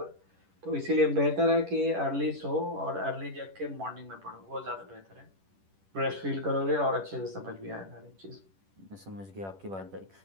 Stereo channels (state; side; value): late; left; 10 ms